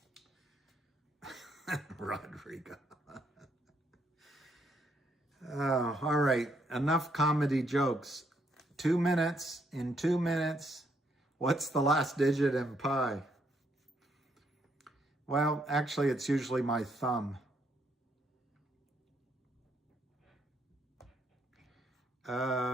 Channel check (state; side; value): normal; both; correlation 0.73